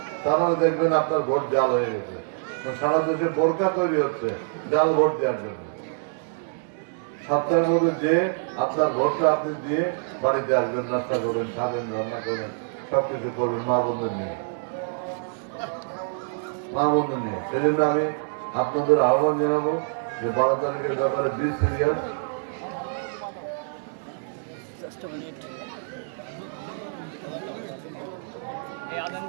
তাহলে দেখবেন আপনার ভোট জাল হয়ে গেছে। সারা দেশে বোরকা তৈরি হচ্ছে জাল ভোট দেওয়ার জন্য। 7টার মধ্যে যে আপনার ভোটটা আপনি দিয়ে বাড়িতে আসবেন, নাস্তা করবেন, খাবেন, রান্না করবেন, সবকিছু করবেন মা বন্ধুর নিয়ে, মা বন্ধু নিয়ে। সেই জন্য আমি আপনাদের আহ্বান জানাবো যে 12 তারিখের ব্যাপারে বি সিরিয়াস।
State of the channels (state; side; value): silent; left; digital silence